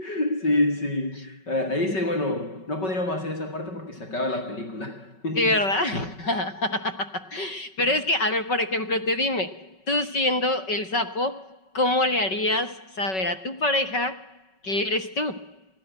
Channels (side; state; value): right; late; 5.3 ms